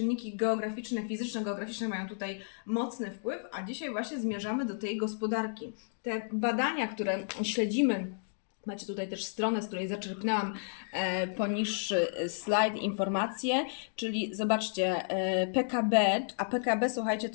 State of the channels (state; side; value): silent; right; digital silence